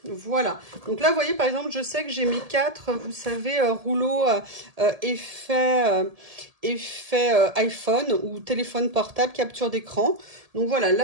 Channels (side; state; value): left; late; 1.7 ms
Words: Voilà. Donc là, vous voyez, par exemple, je sais que j'ai mes 4, vous savez, rouleaux effet iPhone ou téléphone portable, capture d'écran. Donc voilà,